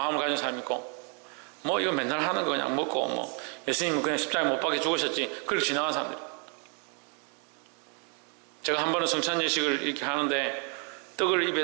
가진 사람이 있고 뭐 이거 맨날 하는 거 그냥 먹고 뭐 예수님은 그냥 십자가에 못 박혀 죽으셨지 그렇게 지나간 사람들. 제가 한 번은 성찬 예식을 이렇게 하는데 떡을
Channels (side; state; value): left; quieter; 38.0 dB